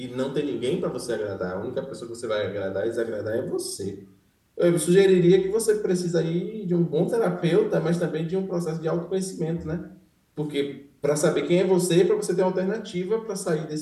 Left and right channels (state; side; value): identical; both; correlation 1.00